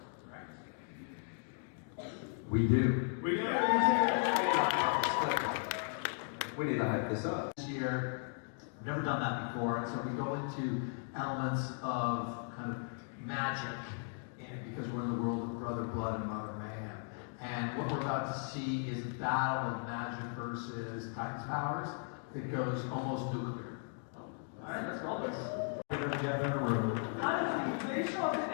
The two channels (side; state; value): right; silent; 53 dB below the other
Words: Right? We do. We do. we need to hype this up. This year, we've never done that before, and so we go into elements of kind of magic in it because we're in the world of Brother Blood and Mother Mayhem. And what we're about to see is a battle of magic versus Titan's powers that goes almost nuclear. All right, let's roll this. them together in a room. Honestly, they show up in